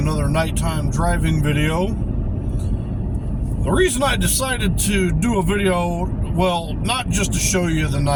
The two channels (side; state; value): both; identical; correlation 1.00